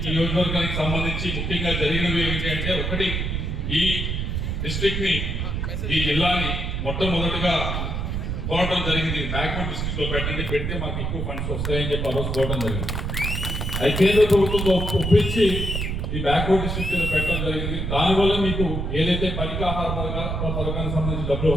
ఈ నియోజకవర్గానికి సంబంధించి ముఖ్యంగా జరిగినవి ఏమిటి అంటే, ఒకటి ఈ డిస్ట్రిక్ట్ ని, ఈ జిల్లాని మొట్టమొదటిగా కోరడం జరిగింది. బ్యాక్వర్డ్ డిస్ట్రిక్ట్ లో పెడితే మాకు ఎక్కువ ఫండ్స్ వస్తాయని చెప్పి ఆ రోజు కోరడం జరిగింది. అది కేంద్ర ప్రభుత్వం ఒప్పించి ఈ బ్యాక్వర్డ్ డిస్ట్రిక్ట్ పెట్టడం జరిగింది. దానివల్ల మీకు ఏదైతే పనికాహార పథకానికి సంబంధించి డబ్బులు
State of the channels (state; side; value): noise; right; rumble, 2 dB below the sound